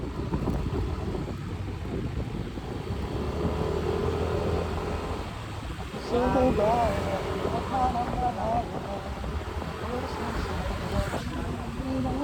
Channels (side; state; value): both; identical; correlation 1.00